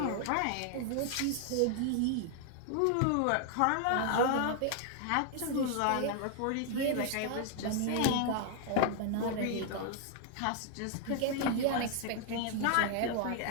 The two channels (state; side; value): different; both; correlation 0.00